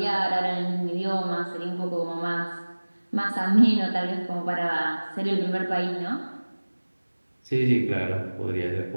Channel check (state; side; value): inverted; both; correlation -1.00